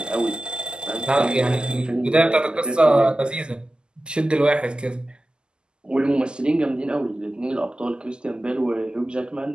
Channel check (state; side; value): late; left; 0.047 ms